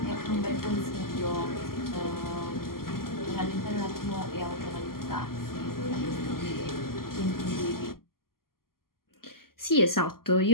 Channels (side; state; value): right; late; 0.92 ms